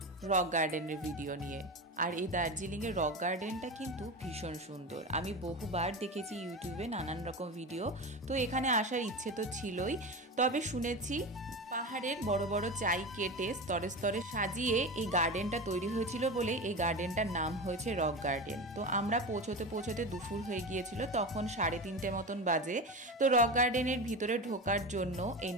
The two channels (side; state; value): both; normal; correlation 0.24